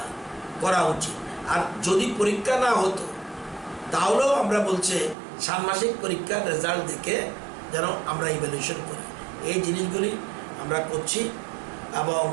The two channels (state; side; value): drops out; left; at 5.2 s